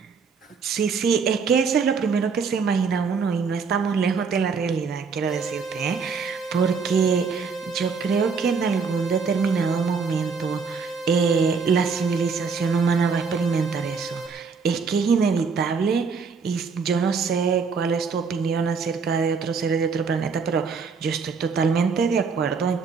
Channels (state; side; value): quieter; left; 5.3 dB